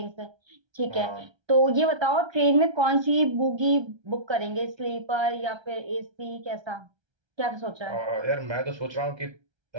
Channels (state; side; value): late; left; 1.3 ms